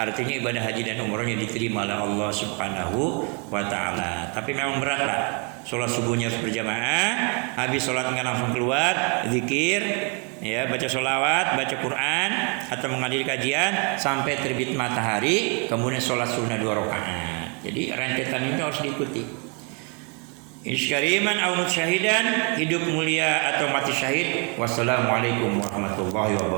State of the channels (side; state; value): left; quieter; 35.6 dB